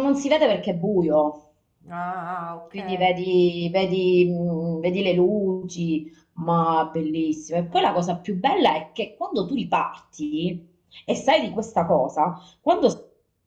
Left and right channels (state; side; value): identical; both; correlation 1.00